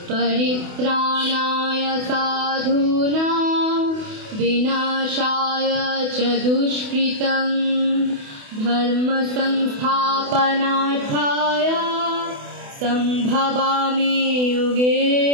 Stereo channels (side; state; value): left; late; 28 ms